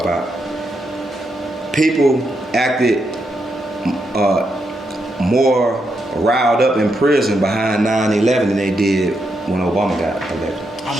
about people acted more riled up in prison behind 9/11 than they did when Obama got elected. I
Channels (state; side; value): normal; both; correlation 0.82